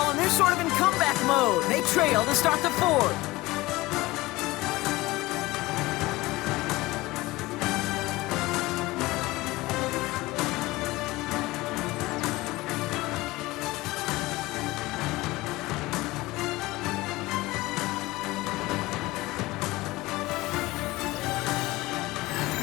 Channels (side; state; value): right; quieter; 19.9 dB